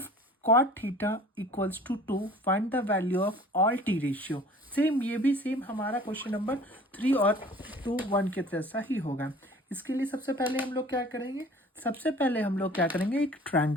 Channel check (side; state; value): both; normal; correlation 0.47